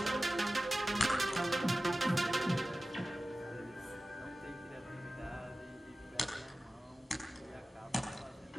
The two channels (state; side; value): normal; both; correlation 0.95